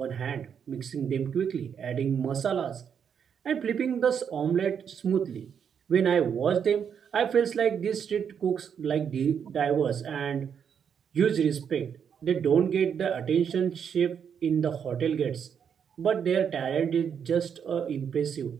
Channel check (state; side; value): quieter; left; 7.6 dB